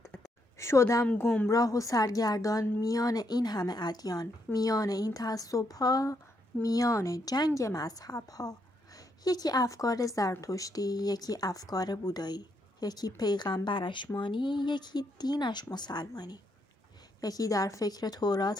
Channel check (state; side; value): normal; both; correlation 0.77